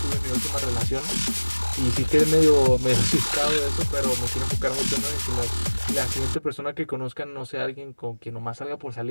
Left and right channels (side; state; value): both; inverted; correlation -1.00